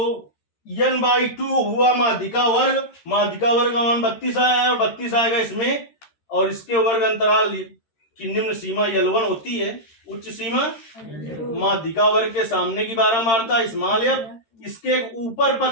n/2 हुआ माध्यिका वर्ग, माध्यिका वर्ग का मान 32 आया है, और 32 आएगा इसमें, और इसके वर्ग अंतराल की निम्न सीमा L1 होती है, उच्च सीमा माध्यिका वर्ग के सामने की बारंबारता स्मॉल f, इसके ऊपर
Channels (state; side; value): late; right; 13 ms